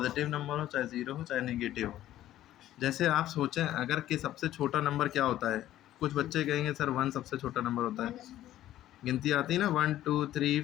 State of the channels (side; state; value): right; quieter; 13.4 dB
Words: नंबर हो, चाहे ज़ीरो हो, चाहे नेगेटिव हो। जैसे आप सोचें अगर कि सबसे छोटा नंबर क्या होता है? कुछ बच्चे कहेंगे सर 1 सबसे छोटा नंबर होता है। गिनती आती है ना 1 2 3